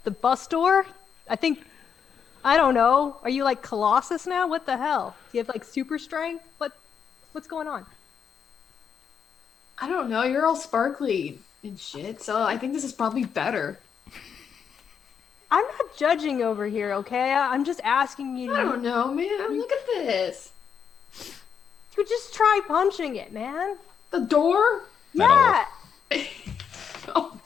bus door? I don't know. Are you like Colossus now? What the hell? Do you have like super strength? What's going on? I don't know. You're all sparkly and shit, so I think this is probably better. I'm not judging over here, okay? I'm just asking you. I don't know, man. Look at this. You just try punching it, man. The door? Metal. Yeah. Oh.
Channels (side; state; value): right; quieter; 7.2 dB